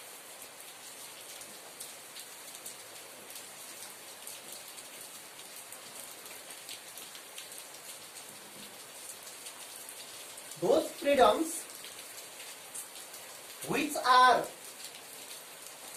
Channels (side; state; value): both; identical; correlation 1.00